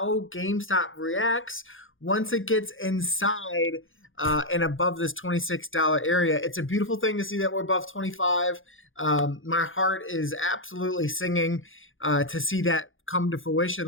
GameStop reacts once it gets inside and above this $26 area. It's a beautiful thing to see that we're above 25. My heart is absolutely singing to see that come to fruition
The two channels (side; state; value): right; late; 0.58 ms